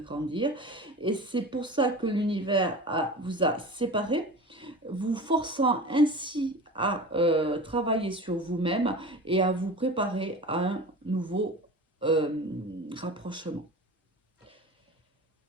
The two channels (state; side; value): normal; both; correlation 0.34